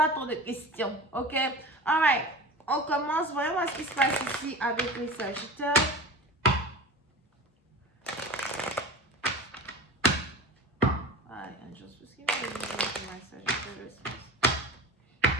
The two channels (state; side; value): normal; both; correlation 0.34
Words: trop de questions, ok? Alright, on commence. Voyons voir ce qui se passe ici avec les Sagittaires. Alright, angels, please give me a reading for my Sagittarius.